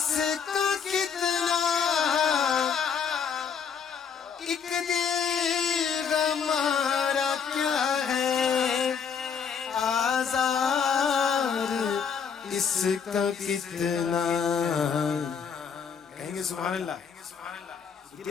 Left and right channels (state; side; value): quieter; right; 6.8 dB